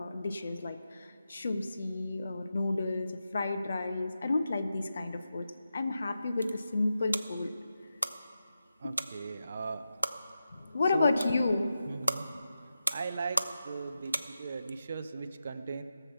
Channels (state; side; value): inverted; both; correlation -0.90